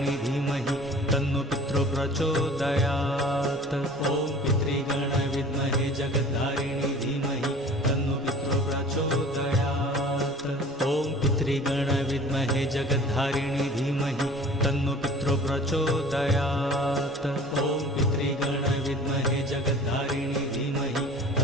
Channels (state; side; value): normal; both; correlation 0.45